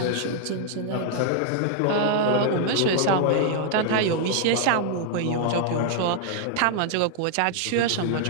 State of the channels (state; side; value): different; both; correlation 0.00